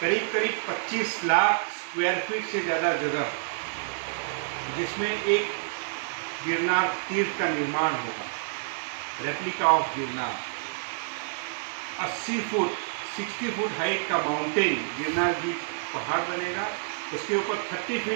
25 लाख स्क्वायर फीट से ज़्यादा जगह, जिसमें एक गिरनार तीर्थ का निर्माण होगा, replica of Girnar. 60 foot height का माउंटेन गिरनार जी पहाड़ बनेगा, उसके ऊपर 30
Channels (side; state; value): left; silent; digital silence